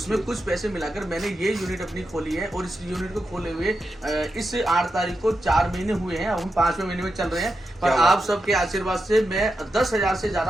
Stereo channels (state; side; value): normal; both; correlation 0.88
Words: कुछ पैसे मिलाकर मैंने ये यूनिट अपनी खोली है, और इस यूनिट को खोले हुए इस 8 तारीख को 4 महीने हुए हैं। हम 5वें महीने में चल रहे हैं, पर आप सबके आशीर्वाद से मैं 10,000 से